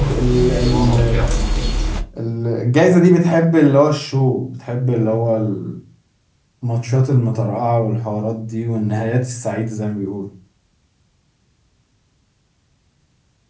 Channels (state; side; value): identical; both; correlation 1.00